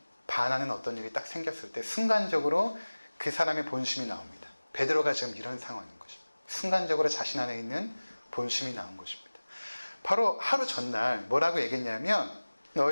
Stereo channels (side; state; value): both; inverted; correlation -1.00